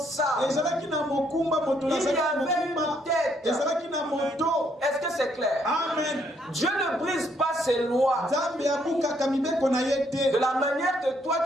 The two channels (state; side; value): normal; both; correlation 0.71